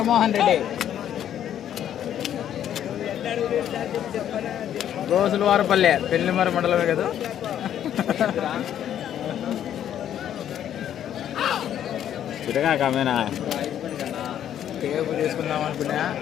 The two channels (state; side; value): quieter; right; 10.4 dB